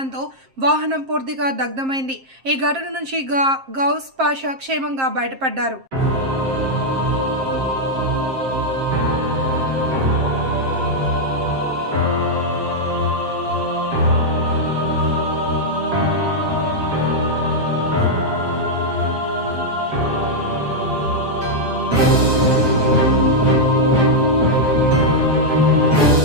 వాహనం పూర్తిగా దగ్ధమైంది. ఈ ఘటన నుంచి గౌస్ పాషా క్షేమంగా బయటపడ్డారు.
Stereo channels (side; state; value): left; late; 7.5 ms